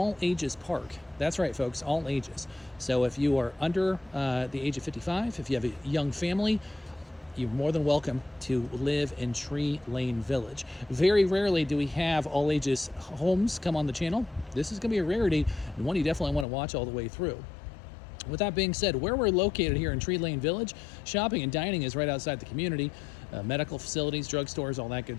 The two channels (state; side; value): drops out; right; at 16.4 s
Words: park. That's right, folks, all ages. So if you are under the age of 55, if you have a young family, you're more than welcome to live in Tree Lane Village. Very rarely do we have all ages homes come on the channel. This is going to be a rarity and one you definitely want to watch all the way through. With that being said, where we're located here in Tree Lane Village, shopping and dining is right outside the community. Medical facilities, drugstores, all that